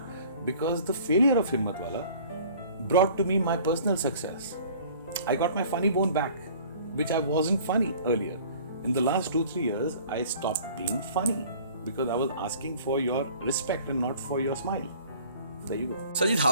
because the failure of Himmatwala brought to me my personal success. I got my funny bone back, which I wasn't funny earlier. In the last 2-3 years, I stopped being funny because I was asking for your respect and not for your smile. There you go. Sajid,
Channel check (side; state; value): both; inverted; correlation -0.50